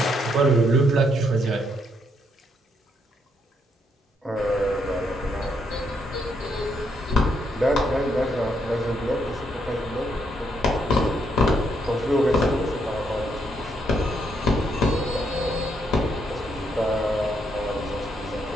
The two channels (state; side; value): normal; both; correlation 0.75